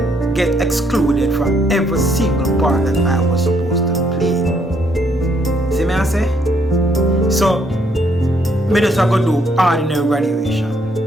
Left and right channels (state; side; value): normal; both; correlation 0.71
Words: get excluded from every single part that I was supposed to play. See me I say? So me just have to do ordinary